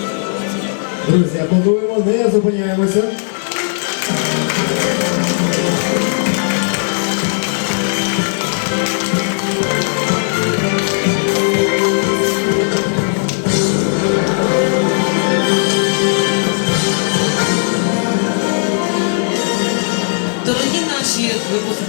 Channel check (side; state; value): right; silent; digital silence